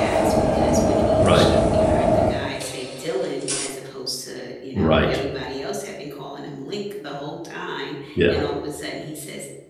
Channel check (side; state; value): both; identical; correlation 1.00